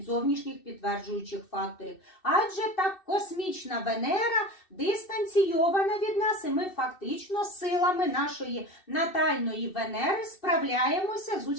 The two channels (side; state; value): right; late; 2.6 ms